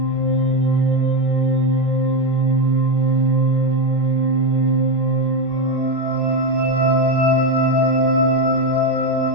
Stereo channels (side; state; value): left; late; 25 ms